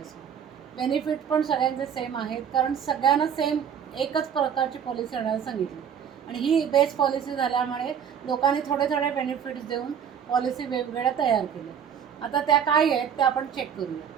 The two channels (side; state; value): left; quieter; 8.0 dB